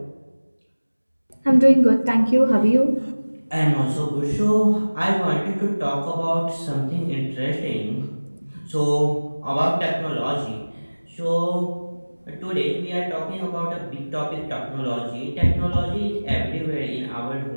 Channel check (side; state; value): both; inverted; correlation -1.00